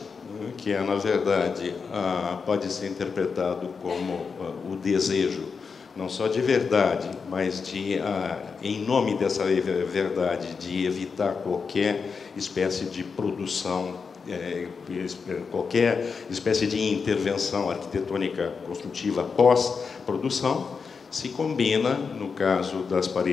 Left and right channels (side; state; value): right; quieter; 5.4 dB